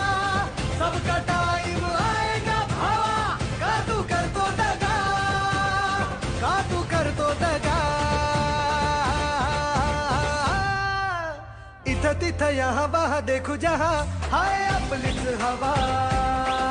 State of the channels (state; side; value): identical; both; correlation 1.00